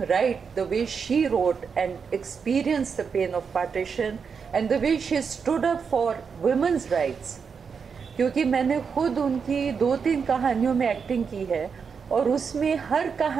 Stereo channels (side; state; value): left; quieter; 6.0 dB